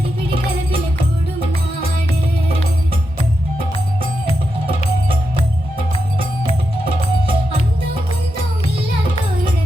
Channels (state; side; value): normal; both; correlation 0.86